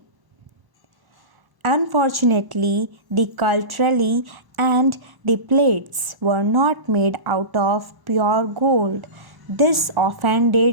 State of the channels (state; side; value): late; left; 1.1 ms